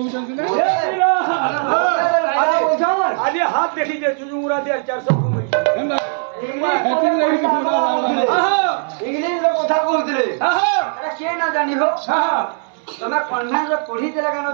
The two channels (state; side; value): silent; left; 67 dB below the other